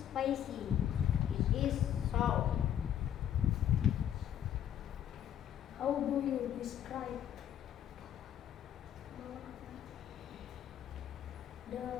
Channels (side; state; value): right; quieter; 10.3 dB